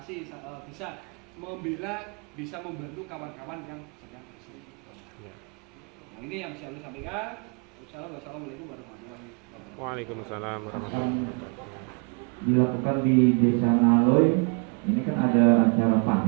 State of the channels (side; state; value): left; quieter; 36.6 dB